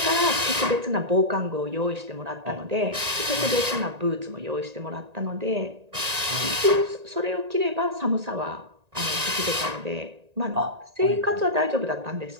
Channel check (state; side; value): late; left; 1.8 ms